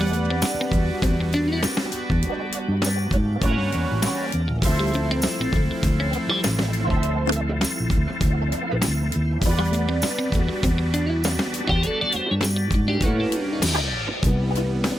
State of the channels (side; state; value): both; normal; correlation 0.90